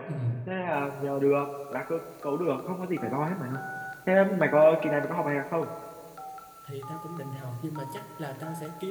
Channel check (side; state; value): both; identical; correlation 1.00